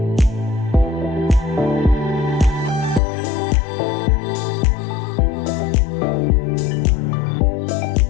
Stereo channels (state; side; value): drops out; right; at 3.0 s